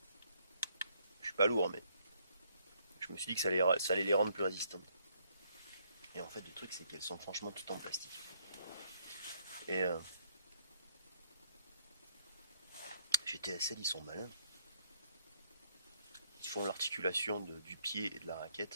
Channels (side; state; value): both; inverted; correlation -0.69